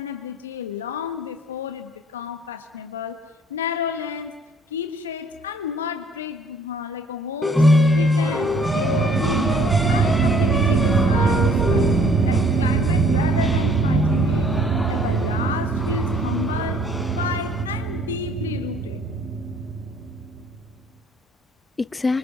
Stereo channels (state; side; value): normal; both; correlation 0.59